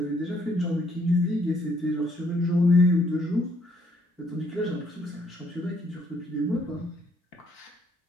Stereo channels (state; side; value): normal; both; correlation 0.68